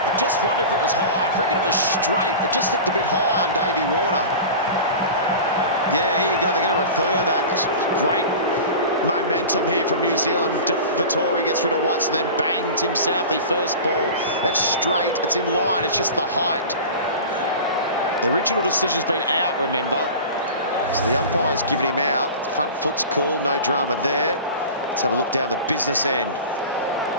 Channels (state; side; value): inverted; both; correlation -0.33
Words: just wondered if it was high. I reckon it was straight. It just looked a bit high on Davey Warner. Yeah, here you go. They're going to refer that. It's great momentum here from New Zealand. Vettori gets rid of Watson, then bang, Tim Southey, first ball. That's straight. It's in line. It's just the height. The original decision's been out, remember. So the umpire's given him out. Front foot's cool, no drama there. Let's have a look down the business end.